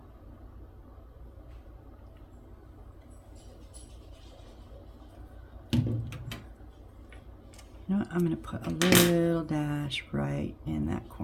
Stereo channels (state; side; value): identical; both; correlation 1.00